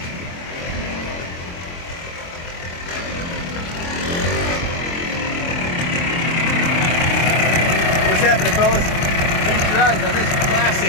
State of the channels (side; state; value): right; late; 23 ms